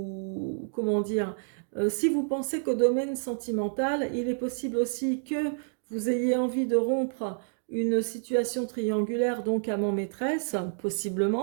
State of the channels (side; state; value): left; silent; digital silence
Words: comment dire, si vous pensez qu'au domaine sentimental, il est possible aussi que vous ayez envie de rompre une situation triangulaire, donc amant-maîtresse,